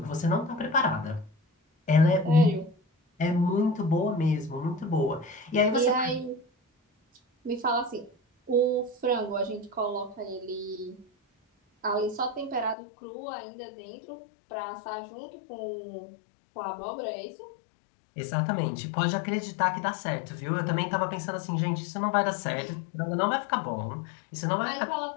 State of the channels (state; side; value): drops out; right; at 12.8 s